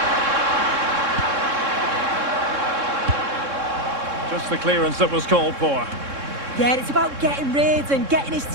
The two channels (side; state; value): left; late; 3.6 ms